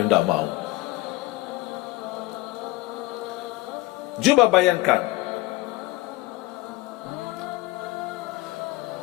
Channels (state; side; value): quieter; right; 20.1 dB